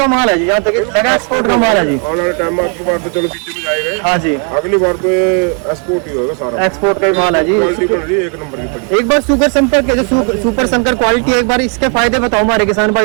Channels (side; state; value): left; quieter; 38.6 dB